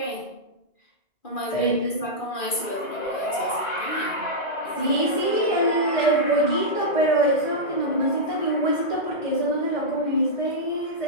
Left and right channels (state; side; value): late; right; 2.4 ms